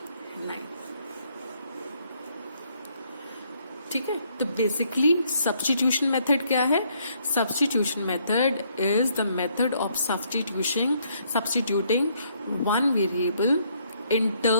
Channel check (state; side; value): inverted; both; correlation -0.69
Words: ठीक है। तो बेसिकली सब्स्टिट्यूशन मेथड क्या है, substitution method is the method of substituting one variable in